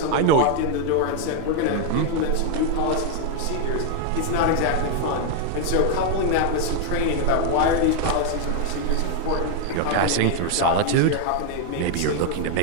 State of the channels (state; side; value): different; both; correlation 0.00